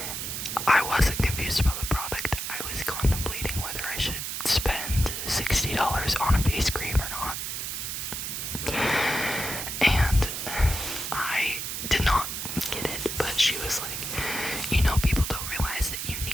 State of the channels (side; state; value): right; noise; hiss, 4 dB below the sound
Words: I wasn't confused about the product. I was contemplating whether I should spend $60 on a face cream or not. And I did not get it, but she was like, you know, people don't realize that you